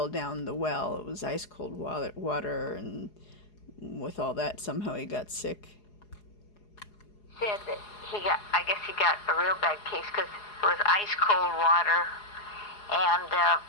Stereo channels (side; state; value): right; late; 4.8 ms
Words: down the well. It was ice cold water, and with all that, somehow he got sick. Said that I guess he got a real bad case because it was ice cold water. And,